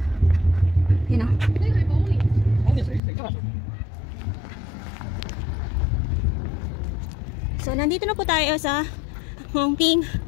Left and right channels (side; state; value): right; drops out; at 3.0 s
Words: You know. So nandito na po tayo sa Hongping.